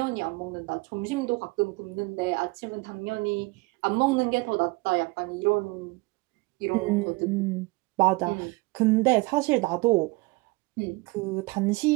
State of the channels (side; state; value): left; quieter; 24.3 dB